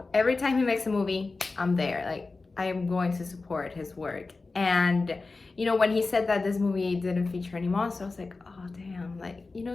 every time he makes a movie, I'm there. Like, I am going to support his work. And you know, when he said that this movie didn't feature any monsters, I was like, oh damn, like, you know,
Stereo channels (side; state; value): right; quieter; 3.7 dB